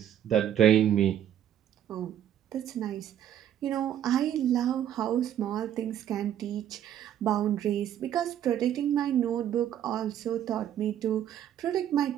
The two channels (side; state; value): left; quieter; 10.5 dB